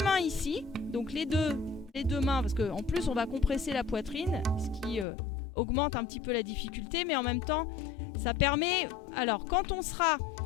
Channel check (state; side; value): drops out; right; at 5.1 s